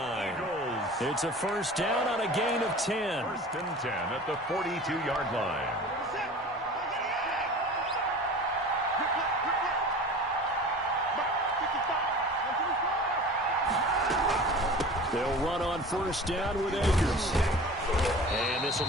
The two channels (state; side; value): normal; both; correlation 0.39